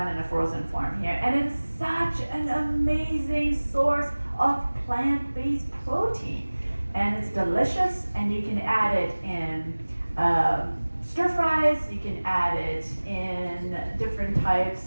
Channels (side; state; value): both; inverted; correlation -1.00